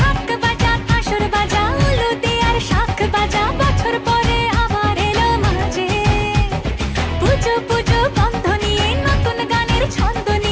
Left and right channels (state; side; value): identical; both; correlation 1.00